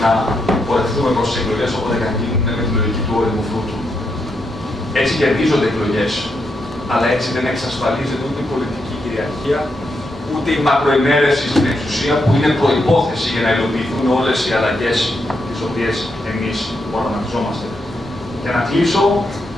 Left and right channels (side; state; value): both; normal; correlation 0.81